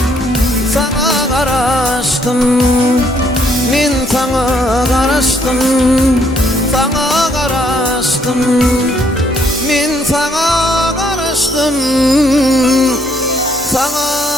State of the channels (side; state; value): both; normal; correlation 0.68